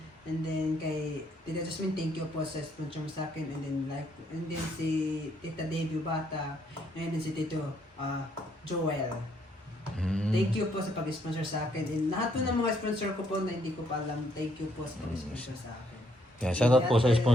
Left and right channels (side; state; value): both; normal; correlation 0.70